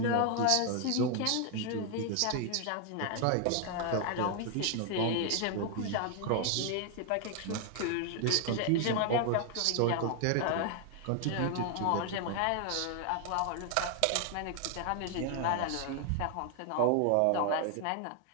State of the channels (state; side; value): different; both; correlation 0.00